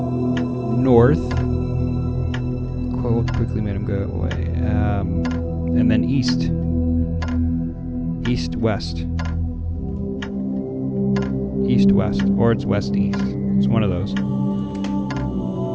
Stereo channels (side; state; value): both; identical; correlation 1.00